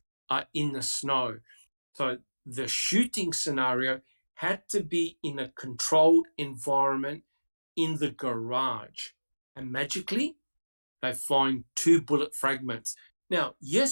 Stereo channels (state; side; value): inverted; both; correlation -1.00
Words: in the snow. So the shooting scenario had to be in a controlled environment in the garage. And magically, they find 2 bullet fragments. Now,